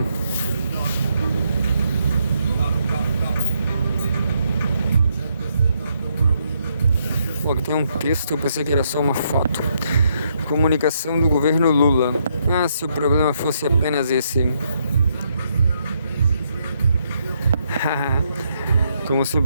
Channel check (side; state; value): both; inverted; correlation -0.76